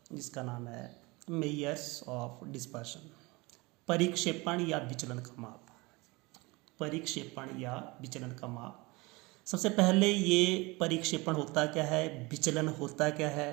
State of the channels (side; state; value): left; quieter; 24.4 dB